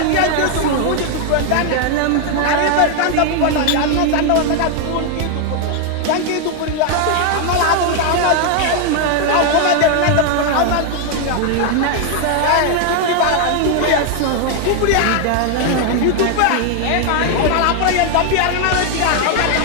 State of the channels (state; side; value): different; both; correlation 0.00